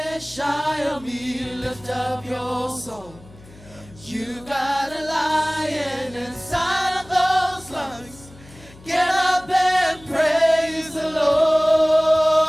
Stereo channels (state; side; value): noise; left; hum, 22 dB below the sound